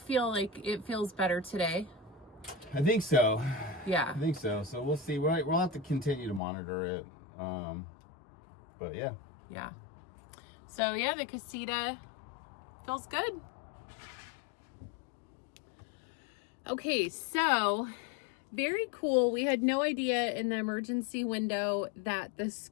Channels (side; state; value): right; drops out; at 6.4 s